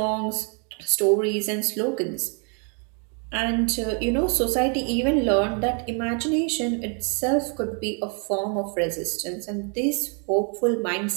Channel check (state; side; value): quieter; left; 39.3 dB